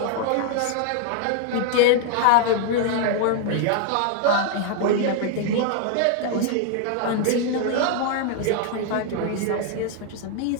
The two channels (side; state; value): both; different; correlation 0.00